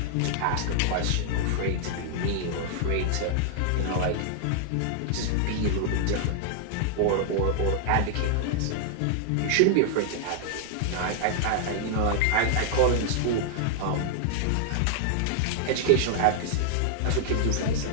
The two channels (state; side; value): different; both; correlation 0.00